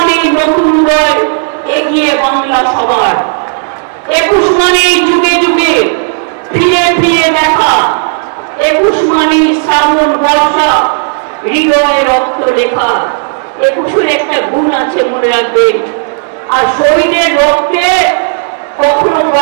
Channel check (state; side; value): silent; left; digital silence